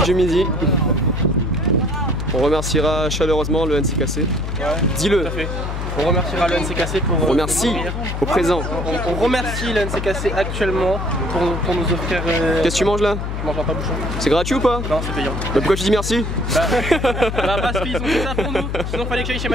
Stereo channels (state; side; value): noise; left; hum, 4 dB below the sound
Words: Du midi. On remerciera chaleureusement le NCKC. Ouais, dis-le. Tout à fait. On remerciera le NCKC pour... On remercie au présent. On remercie le NCKC actuellement pour nous offrir... Qu'est-ce que tu manges là? Je mange un pain-bouchon. C'est gratuit ou pas? Non, c'est payant. Bah pourquoi tu dis merci? Parce qu'ils ont fait ça pour nous. Sinon fallait que j'aille chez